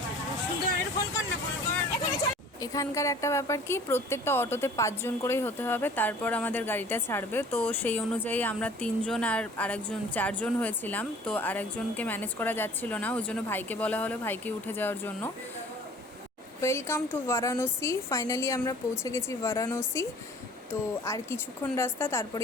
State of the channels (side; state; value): both; normal; correlation 0.49